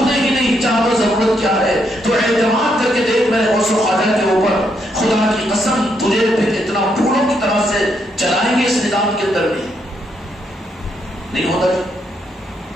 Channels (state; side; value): normal; both; correlation 0.77